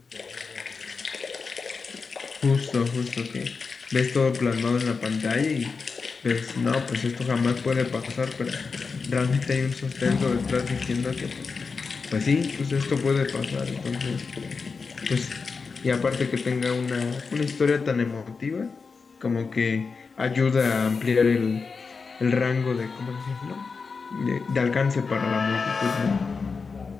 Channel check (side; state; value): right; quieter; 4.9 dB